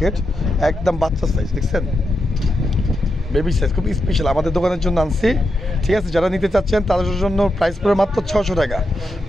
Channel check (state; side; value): normal; both; correlation 0.86